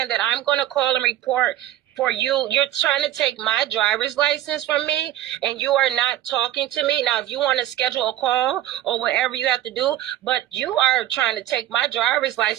that I'm going to call and report for you? You're trying to take my driver's license from me, and you are not talking to me. Now, if you want to schedule a call or whatever you have to do, but you are trying to take my driver's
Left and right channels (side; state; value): left; quieter; 13.4 dB